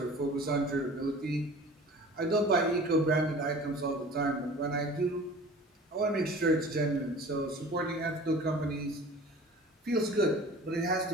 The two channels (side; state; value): both; normal; correlation 0.42